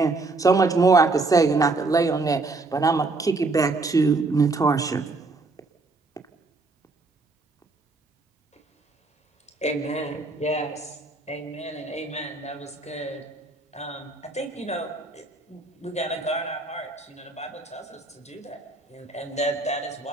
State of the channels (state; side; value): quieter; left; 3.4 dB